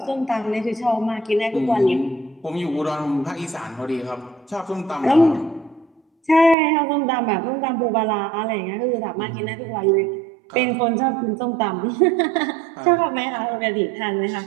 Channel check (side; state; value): left; drops out; at 6.6 s